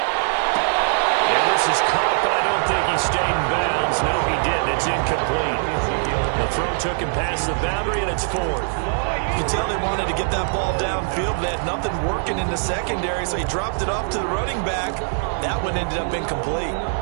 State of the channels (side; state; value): left; silent; 60 dB below the other